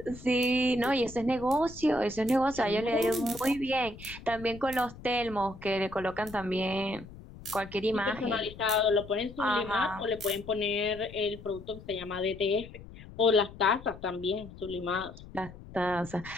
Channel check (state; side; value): noise; left; rumble, 16 dB below the sound